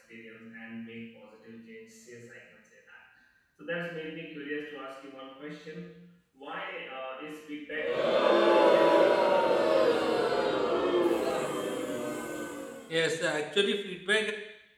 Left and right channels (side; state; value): both; identical; correlation 1.00